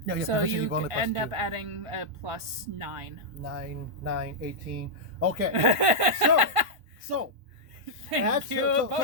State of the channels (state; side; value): late; left; 1.5 ms